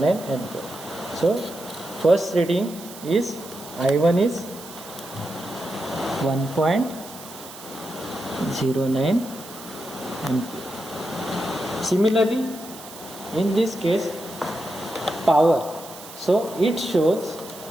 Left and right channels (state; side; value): noise; right; hiss, 16 dB below the sound